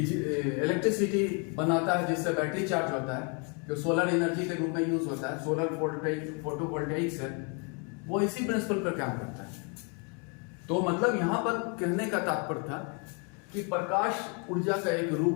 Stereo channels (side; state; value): right; quieter; 36.4 dB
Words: बनाता है, जिससे बैटरी चार्ज होता है, जो सोलर एनर्जी के रूप में यूज होता है। सोलर फोटोवोल्टाइक सेल वो इसी प्रिंसिपल पर काम करता है। तो मतलब यहां पर कहने का तात्पर्य था कि प्रकाश ऊर्जा का एक